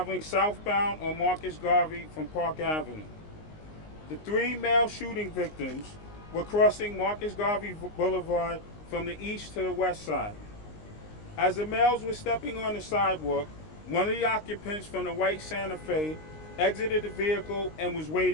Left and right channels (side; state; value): right; late; 19 ms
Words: southbound on Marcus Garvey from Park Avenue. The 3 male shooting victims were crossing Marcus Garvey Boulevard from the east to the west side. As the males were stepping on the sidewalk, one of the occupants from the white Santa Fe exited the vehicle and was